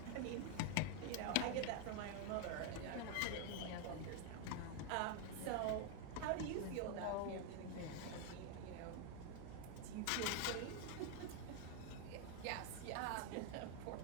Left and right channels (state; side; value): different; both; correlation 0.01